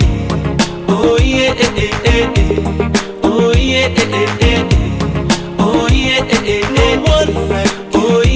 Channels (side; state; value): both; identical; correlation 1.00